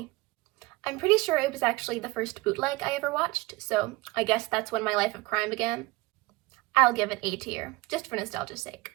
I'm pretty sure it was actually the first bootleg I ever watched, so I guess that's when my life of crime began. I'll give it A tier, just for nostalgia's sake.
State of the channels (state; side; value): quieter; left; 22.1 dB